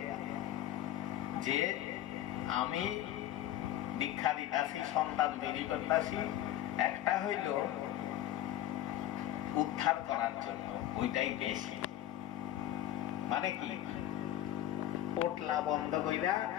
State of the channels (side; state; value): right; quieter; 12.9 dB